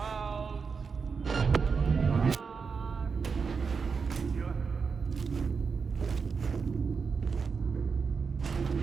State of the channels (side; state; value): left; quieter; 5.4 dB